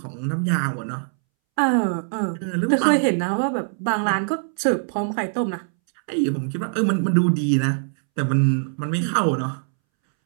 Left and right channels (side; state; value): left; silent; 64 dB below the other